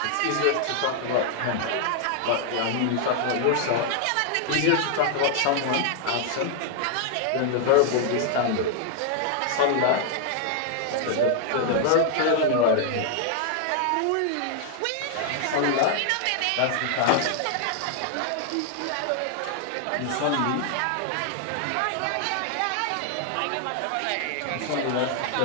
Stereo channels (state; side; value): different; both; correlation 0.00